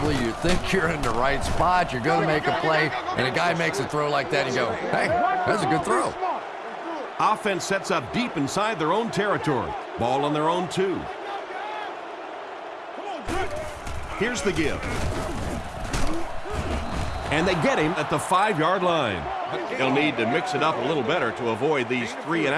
you think you're in the right spot, you're going to make a play, and a guy makes a throw like that, and you go, hey, that's a good throw. Offense sets up deep inside their own territory. Ball on their own 2. Here's the give. And they get him at the 5-yard line. He'll need to mix it up a little better to avoid these 3 and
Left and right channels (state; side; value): identical; both; correlation 1.00